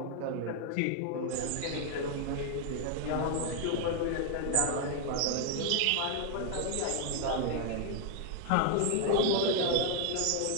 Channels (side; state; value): both; different; correlation 0.00